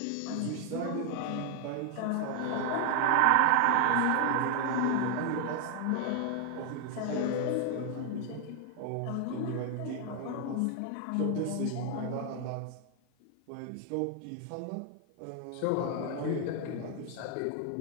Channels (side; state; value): both; different; correlation 0.00